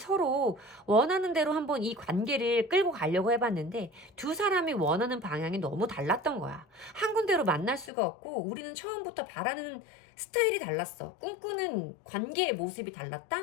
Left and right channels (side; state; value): right; drops out; at 7.9 s